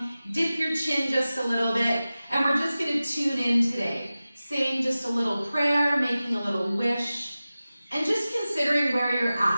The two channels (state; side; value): inverted; both; correlation -0.96